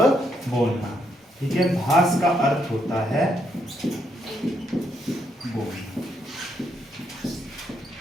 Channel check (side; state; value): both; normal; correlation 0.76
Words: बोलना। ठीक है, भाष का अर्थ होता है बोलना।